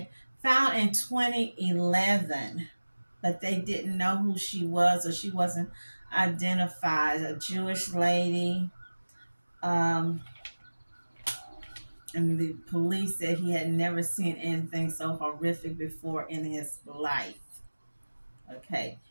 found in 2011, but they didn't know who she was, or she wasn't identified. A Jewish lady. And the police said he had never seen anything so horrific before in his life. Okay,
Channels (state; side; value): inverted; both; correlation -1.00